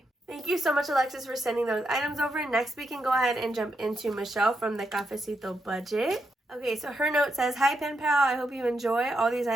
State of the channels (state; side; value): normal; both; correlation 0.82